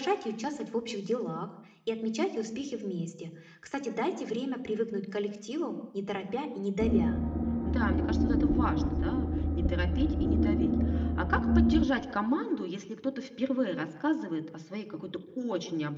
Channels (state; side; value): identical; both; correlation 1.00